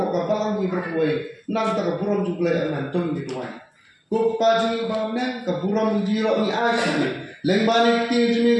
ko ka balang ni berwei nam ta ka buron ju blai anan tong ni tuai ko pa ji ba nang ka buron ji ro ni ai leng bani ti jimi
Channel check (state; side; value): identical; both; correlation 1.00